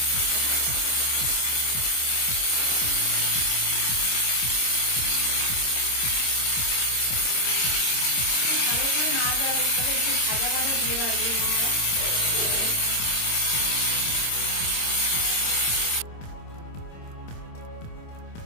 অবস্থায় একটু ভাজা ভাজা দিয়ে রাখবো আমরা।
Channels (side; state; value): right; late; 26 ms